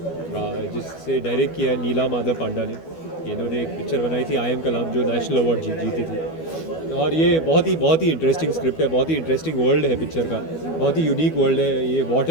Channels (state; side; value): late; right; 12 ms